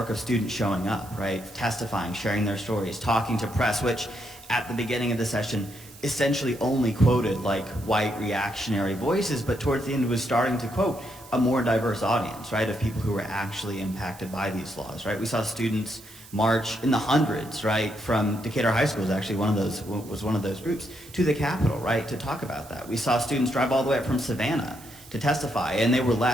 of students showing up, right, testifying, sharing their stories, talking to press, which at the beginning of the session essentially only quoted like white reactionary voices, but towards the end was starting to quote a more diverse audience, right, of people who were actually impacted by these laws, right? We saw students march in the hundreds, right, from Decatur High School was one of those groups, to the Capitol, right, to talk about that. We saw students drive all the way up from Savannah to testify, and they were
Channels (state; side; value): noise; right; hiss, 21 dB below the sound